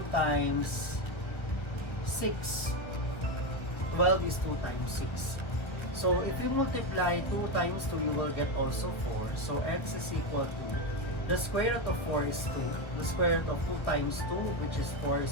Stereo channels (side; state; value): right; late; 1.4 ms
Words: times 6. 12 is 2 times 6. So if you multiply 2 times 2, you will get also 4. So x is equal to, the square root of 4 is 2. The square root of 2 times 2, which is 4,